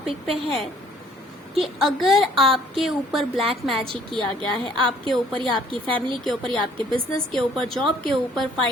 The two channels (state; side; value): normal; both; correlation 0.59